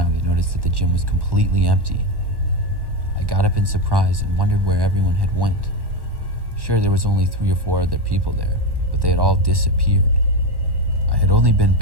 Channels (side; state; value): left; late; 1.1 ms